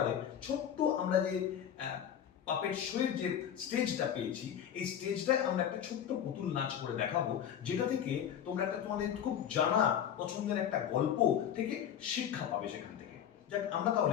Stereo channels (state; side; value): quieter; right; 9.4 dB